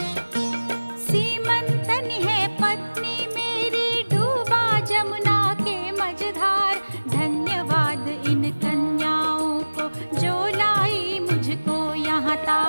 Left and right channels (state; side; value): inverted; both; correlation -1.00